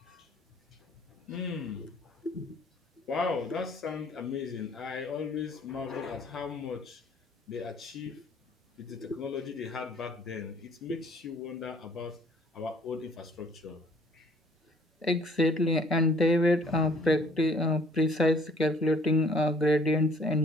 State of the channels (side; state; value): both; normal; correlation 0.58